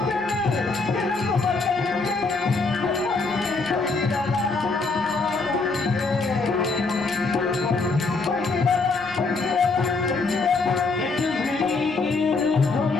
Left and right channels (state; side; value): quieter; right; 3.9 dB